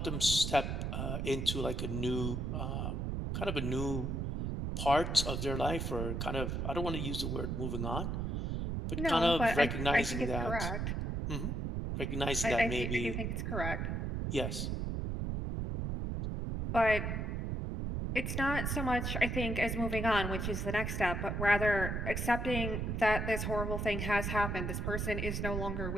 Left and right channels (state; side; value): noise; right; rumble, 1 dB below the sound